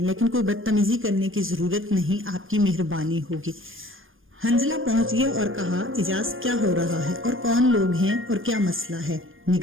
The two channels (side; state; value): left; late; 0.59 ms